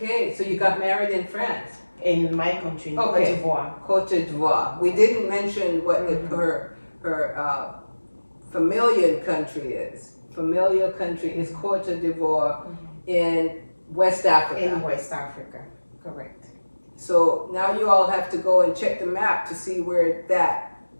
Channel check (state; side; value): inverted; both; correlation -1.00